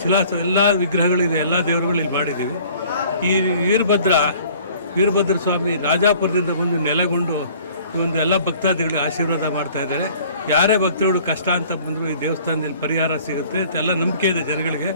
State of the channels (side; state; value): both; inverted; correlation -0.52